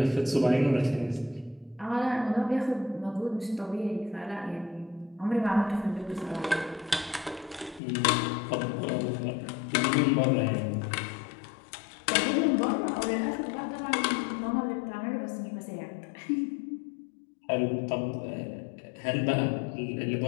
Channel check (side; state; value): right; drops out; at 7.8 s